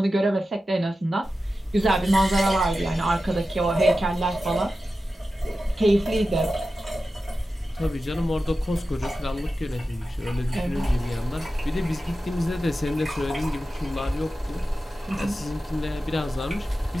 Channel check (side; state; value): both; normal; correlation 0.93